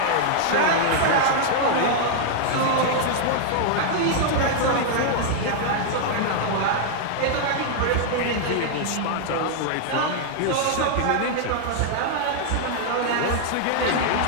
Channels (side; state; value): both; different; correlation -0.01